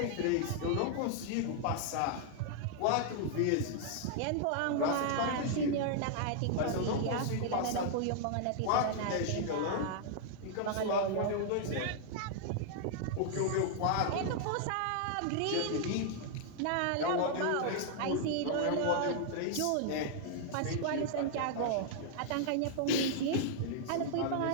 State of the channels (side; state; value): both; different; correlation -0.01